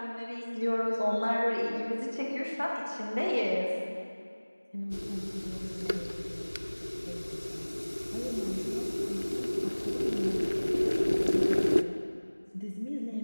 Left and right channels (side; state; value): both; inverted; correlation -1.00